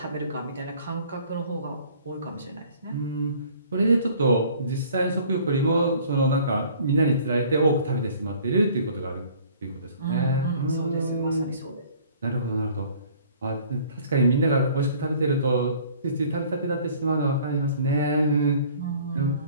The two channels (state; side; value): inverted; both; correlation -0.53